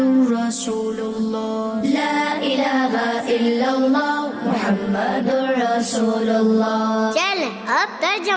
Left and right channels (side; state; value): both; identical; correlation 1.00